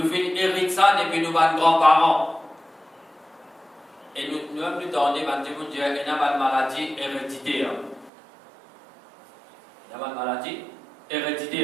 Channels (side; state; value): left; drops out; at 8.1 s